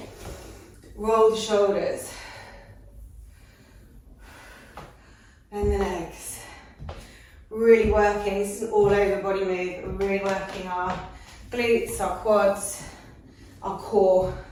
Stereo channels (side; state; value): both; identical; correlation 1.00